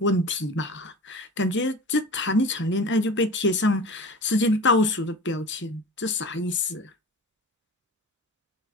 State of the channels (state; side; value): normal; both; correlation 0.36